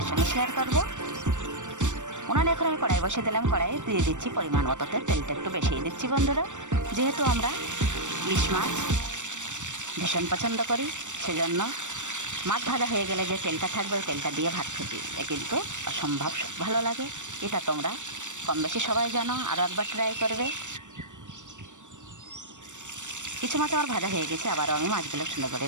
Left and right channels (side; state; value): left; late; 0.85 ms